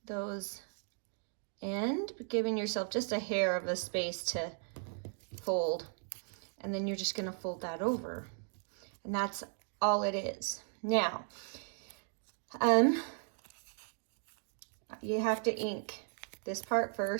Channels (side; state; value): left; silent; 53 dB below the other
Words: those end, giving yourself just a hair of a space to fold. And then you're just gonna fold that over. And that's all it is. Now, you have to ink this part